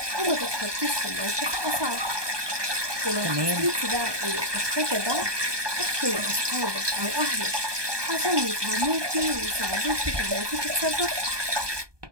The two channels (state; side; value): late; left; 1.2 ms